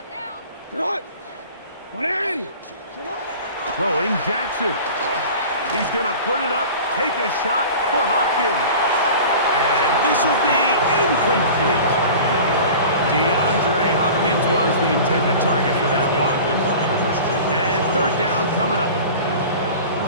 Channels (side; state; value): both; inverted; correlation -0.38